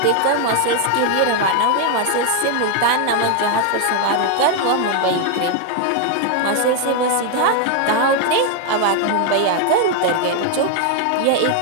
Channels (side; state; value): both; different; correlation 0.01